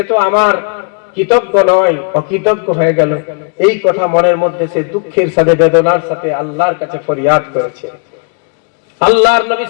তো আমার কৃতজ্ঞ নয়, অকৃতজ্ঞ হয়ে গেল। এই কথা মনের মধ্যে সে দুঃখের সাথে বেদনার সাথে আল্লাহর কাছে ফরিয়াদ করেছে। আল্লাহর নবী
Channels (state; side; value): quieter; right; 38.0 dB